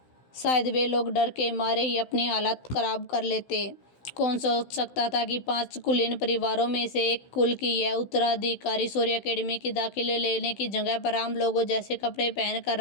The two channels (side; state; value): right; late; 16 ms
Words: शायद वे लोग डर के मारे ही अपनी हालत खराब कर लेते। कौन सोच सकता था कि 5 कुलीन परिवारों में से एक कुल की यह उत्तराधिकारी सूर्य अकेडमी की दाखिले लेने की जगह पर आम लोगों जैसे कपड़े पहन कर